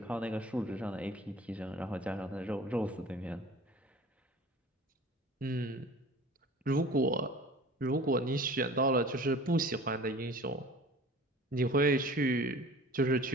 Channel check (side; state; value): both; normal; correlation 0.43